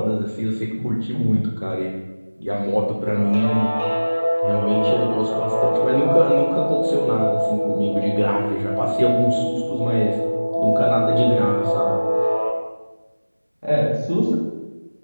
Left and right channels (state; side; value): inverted; both; correlation -1.00